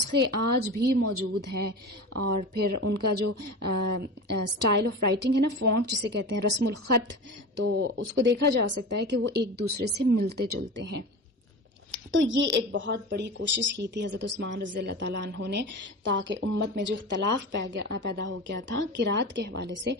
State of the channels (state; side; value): normal; both; correlation 0.30